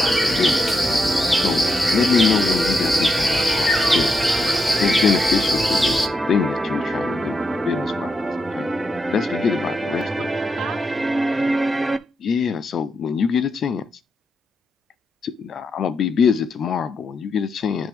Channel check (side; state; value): both; normal; correlation 0.83